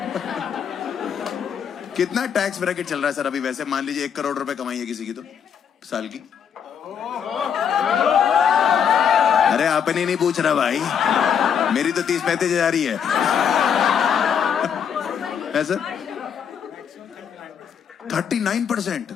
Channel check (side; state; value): right; quieter; 7.7 dB